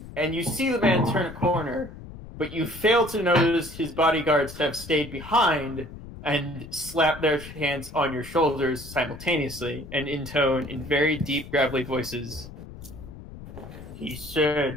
and you see the man turn a corner, but you fail to notice his bodyguards have stayed behind and slap their hands on your shoulders simultaneously and intone in very deep, gravelly voices. He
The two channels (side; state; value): left; noise; rumble, 14 dB below the sound